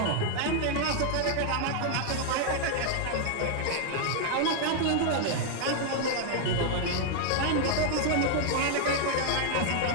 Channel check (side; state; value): both; different; correlation 0.00